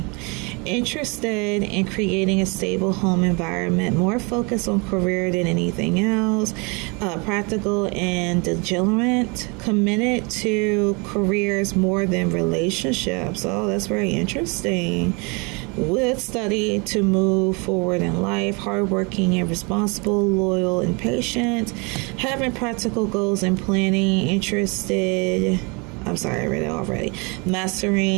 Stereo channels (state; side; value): quieter; left; 30.2 dB